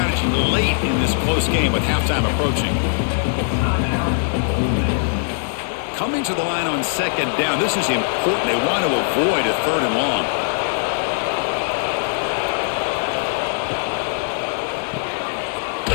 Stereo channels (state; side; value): silent; right; digital silence